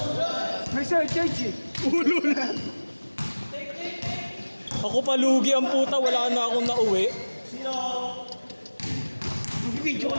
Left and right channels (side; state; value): both; inverted; correlation -1.00